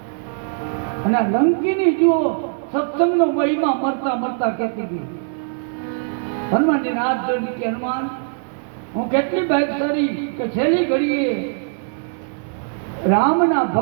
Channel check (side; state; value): left; silent; 60 dB below the other